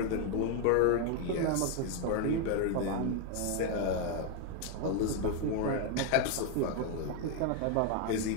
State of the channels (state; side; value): different; both; correlation 0.01